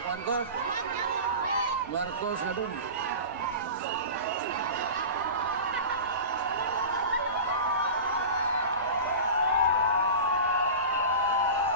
Marcos na doon.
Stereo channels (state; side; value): inverted; both; correlation -0.31